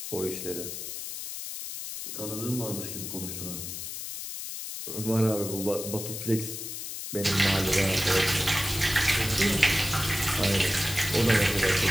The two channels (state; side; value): noise; left; hiss, 7 dB below the sound